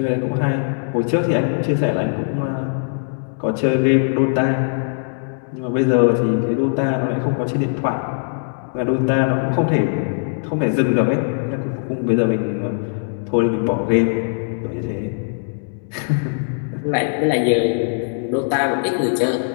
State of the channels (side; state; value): right; silent; digital silence